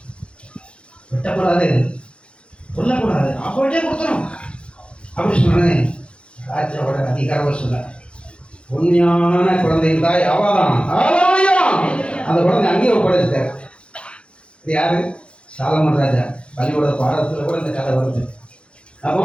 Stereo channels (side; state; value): right; late; 0.058 ms